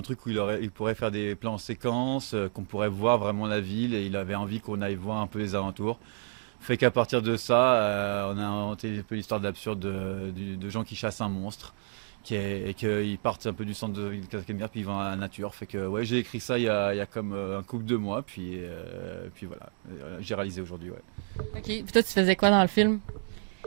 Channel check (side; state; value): left; silent; digital silence